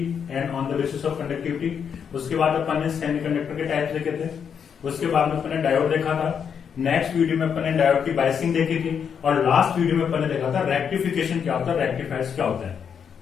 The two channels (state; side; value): quieter; right; 7.3 dB